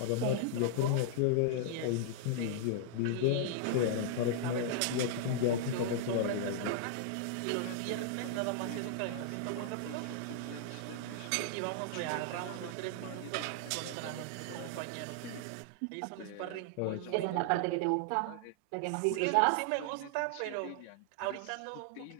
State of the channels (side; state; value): both; different; correlation -0.01